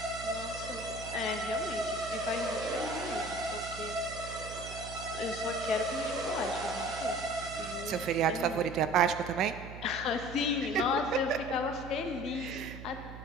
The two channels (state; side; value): noise; right; hum, 12 dB below the sound